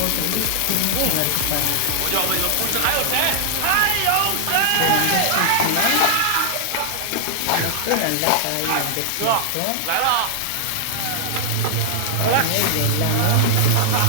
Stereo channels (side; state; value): both; different; correlation -0.01